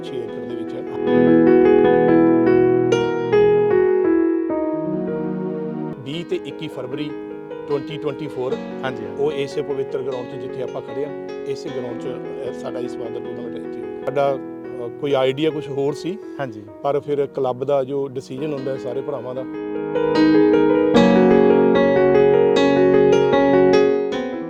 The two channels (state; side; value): identical; both; correlation 1.00